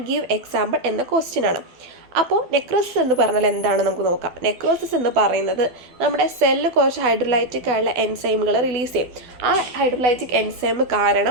give example എന്ന ക്വസ്റ്റ്യൻ ആണ്. അപ്പോൾ നെക്രോസിസ് എന്ന് പറഞ്ഞാൽ എന്താണ് നമുക്ക് നോക്കാം. നെക്രോസിസ് എന്ന് പറയുന്നത് നമ്മുടെ സെല്ല് കുറച്ച് ഹൈഡ്രോലൈറ്റിക് ആയുള്ള എൻസൈമുകൾ റിലീസ് ചെയ്യും. ആ ഹൈഡ്രോലൈറ്റിക് എൻസൈം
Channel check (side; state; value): left; late; 12 ms